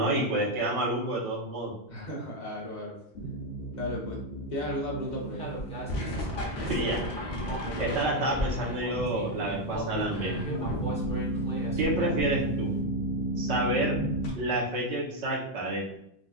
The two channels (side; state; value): both; normal; correlation 0.04